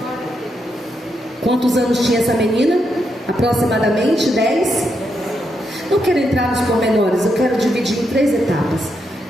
Quantos anos tinha essa menina? Aproximadamente 10. Não quero entrar nos pormenores, eu quero dividir em 3 etapas.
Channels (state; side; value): normal; both; correlation 0.81